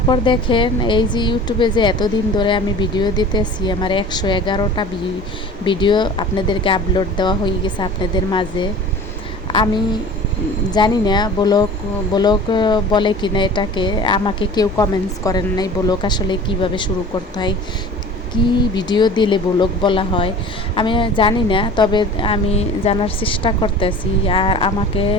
দেখেন, এই যে ইউটিউবে যে এতদিন ধরে আমি ভিডিও দিতেছি, আমার 111টা ভিডিও আপনাদেরকে আপলোড দেওয়া হয়ে গেছে আপনাদের মাঝে। আমি জানি না ব্লগ ব্লগ বলে কিনা এটাকে, আমাকে কেউ কমেন্টস করেন নাই ব্লগ আসলে কিভাবে শুরু করতে হয়, কি ভিডিও দিলে ব্লগ বলা হয় আমি জানি না, তবে আমি জানার চেষ্টা করতেছি। আর আমাকে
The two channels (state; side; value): normal; both; correlation 0.41